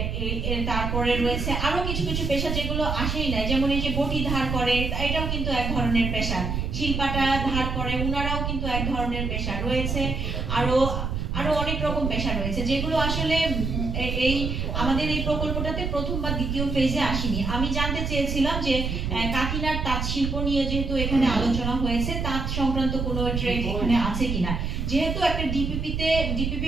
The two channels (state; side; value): noise; right; rumble, 2 dB below the sound